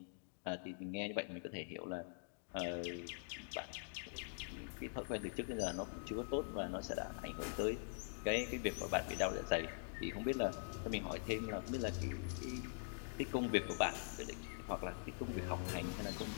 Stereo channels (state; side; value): silent; right; digital silence